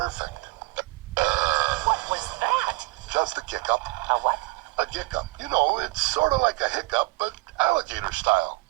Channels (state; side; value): quieter; left; 22.5 dB